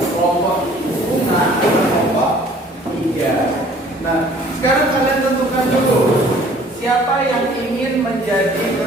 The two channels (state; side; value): normal; both; correlation 0.54